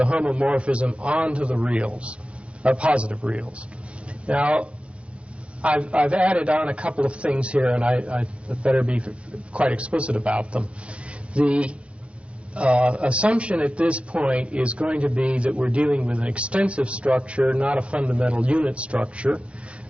homomorphism onto the reals, positive reals. Now, I've added on a couple of things here, and I better be quite explicit about them. The assumption at this point is going to be that we're dealing with an extensive structure, not a fundamental unit structure.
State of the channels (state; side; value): late; left; 0.061 ms